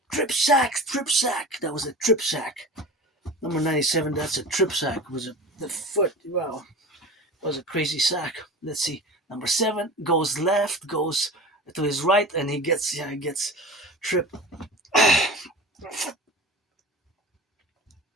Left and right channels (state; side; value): normal; both; correlation 0.34